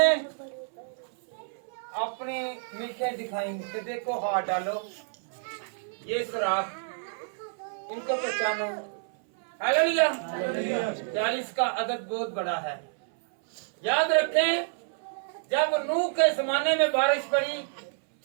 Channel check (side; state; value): left; silent; 59 dB below the other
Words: अपनी मीखे दिखाई कि देखो हाथ डालो, ये सुराख, इनको पहचानो। हालेलुया। 40 का अदद बहुत बड़ा है। याद रखें, जब नूह के जमाने में बारिश पड़ी